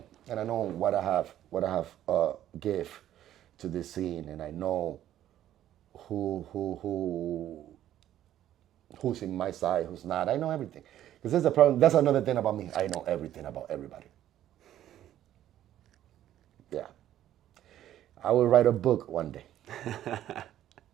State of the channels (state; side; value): quieter; left; 12.1 dB